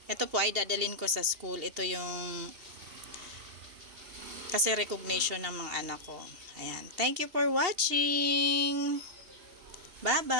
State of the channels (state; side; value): late; left; 2.8 ms